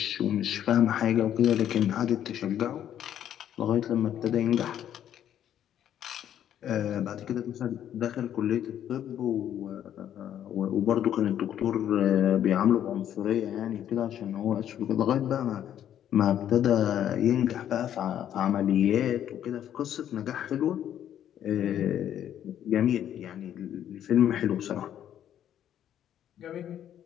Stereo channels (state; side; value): quieter; right; 10.5 dB